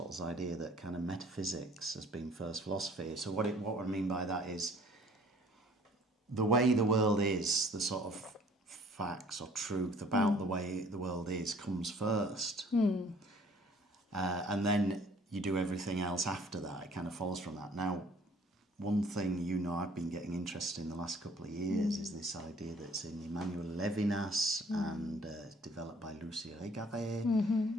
idea that kind of metaphysics has been first philosophy. So what I mean by that is the way the world is, the sort of facts or truth about the way the world is comes first. And then you do everything else after that. It kind of follows from that. Now, one thing I've been getting interested in the last couple of years is this idea that's in Emmanuel Levinas and developed by Lucie Régaré.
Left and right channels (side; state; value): both; normal; correlation 0.55